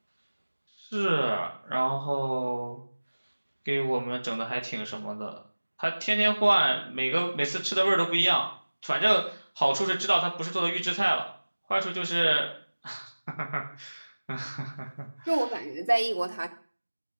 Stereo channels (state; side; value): inverted; both; correlation -1.00